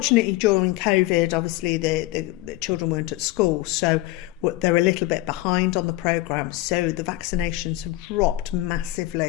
during COVID, obviously the children weren't at school, so they're a little bit behind on the programme. So the vaccinations have dropped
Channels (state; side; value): quieter; right; 17.4 dB